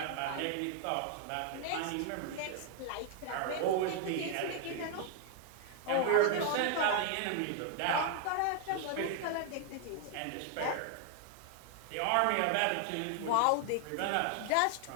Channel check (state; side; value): different; both; correlation 0.00